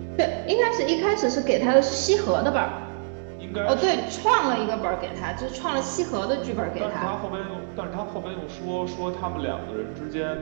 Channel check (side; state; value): left; silent; digital silence